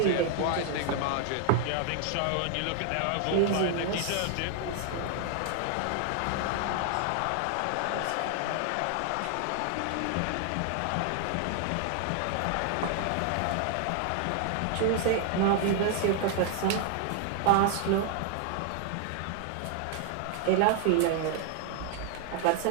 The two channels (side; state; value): both; different; correlation 0.00